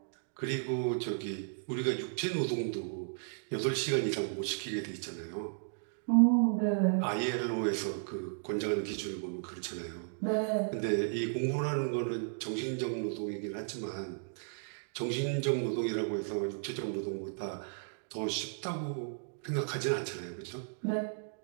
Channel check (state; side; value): silent; left; digital silence